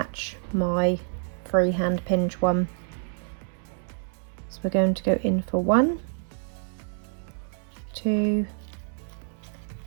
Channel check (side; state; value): left; silent; 60 dB below the other